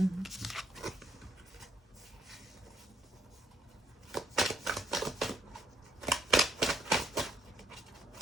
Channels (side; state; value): both; normal; correlation 0.68